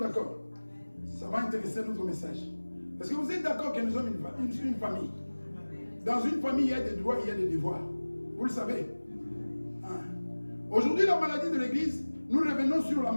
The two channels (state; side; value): inverted; both; correlation -1.00